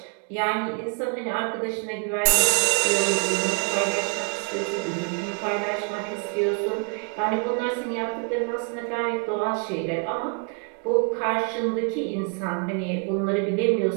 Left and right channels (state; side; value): quieter; left; 37.0 dB